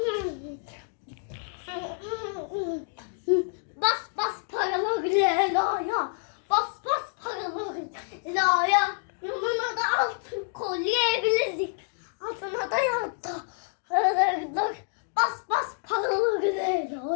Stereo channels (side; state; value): right; silent; digital silence